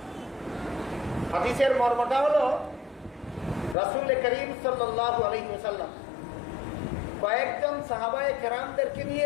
হাদিসের মর্মটা হলো রাসূল করিম সাল্লাল্লাহু আলাইহি ওয়াসাল্লাম কয়েকজন সাহাবায়ে কেরামদেরকে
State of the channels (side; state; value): right; drops out; at 3.8 s